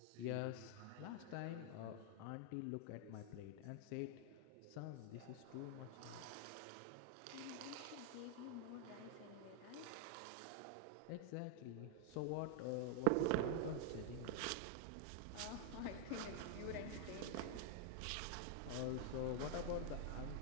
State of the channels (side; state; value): both; different; correlation 0.00